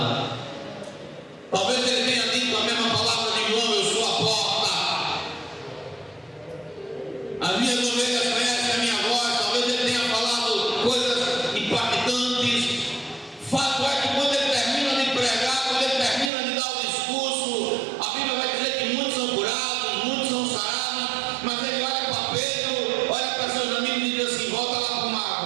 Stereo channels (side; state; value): left; drops out; at 16.3 s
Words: Talvez ele tenha dito a mesma palavra de João: eu sou a porta. As minhas ovelhas conhecem a minha voz. Talvez ele tenha falado coisas impactantes. Fato é que quando ele termina de pregar, quando ele termina de dar o discurso, a Bíblia vai dizer que muitos são curados, muitos são sarados. Mas ele olha para Pedro, olha para seus amigos e diz assim: volta lá para o mar